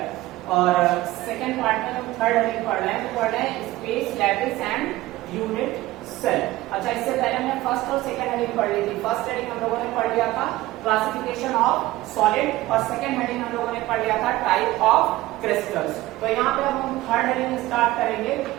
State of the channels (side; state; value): left; quieter; 17.4 dB